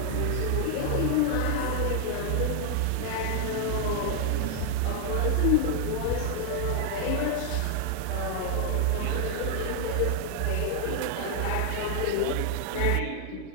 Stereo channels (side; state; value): both; different; correlation 0.00